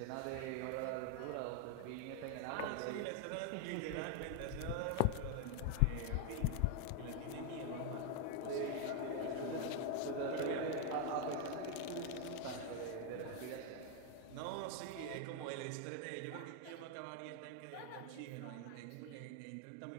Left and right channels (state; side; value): different; both; correlation 0.01